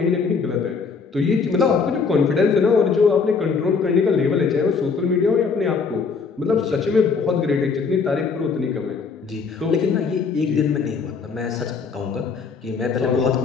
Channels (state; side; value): quieter; right; 5.2 dB